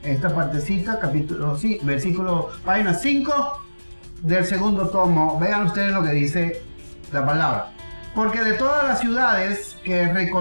esta partecita, capítulo, sí, versículo, página 5 del segundo tomo. Vean ustedes lo que dice la palabra. Porque de todas las ciudades que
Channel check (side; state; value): both; inverted; correlation -1.00